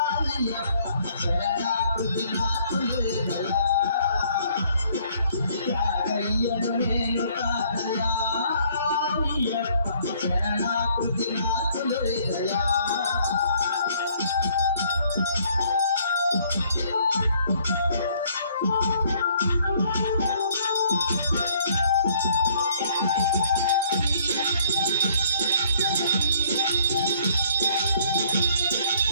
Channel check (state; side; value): inverted; both; correlation -0.62